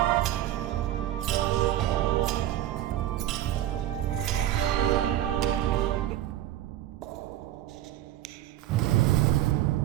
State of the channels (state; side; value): quieter; left; 13.2 dB